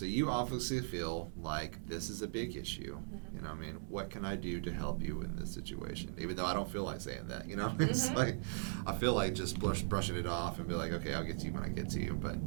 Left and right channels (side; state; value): left; silent; 52 dB below the other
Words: you obviously feel like this is a big issue. I mean, what can I do to help you in this situation? Even though I don't feel like saying that, it's like, I feel like just brushing it off and be like, okay, I'll get to you when I get to you, but